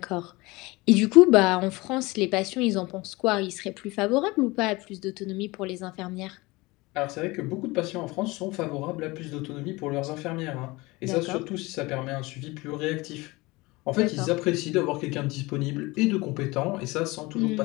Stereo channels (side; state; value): right; quieter; 22.6 dB